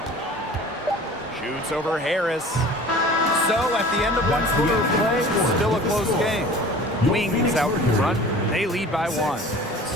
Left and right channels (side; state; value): both; normal; correlation 0.43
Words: Shoots over Harris. So at the end of 1 quarter of play, still a close game. Wings out in front. They lead by 1.